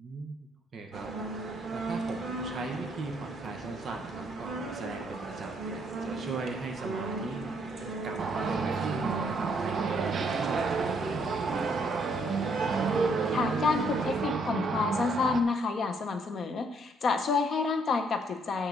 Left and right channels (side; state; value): both; normal; correlation 0.69